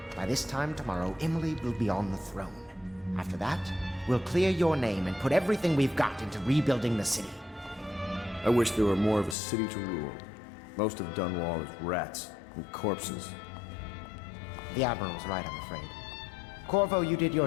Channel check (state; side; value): drops out; right; at 9.3 s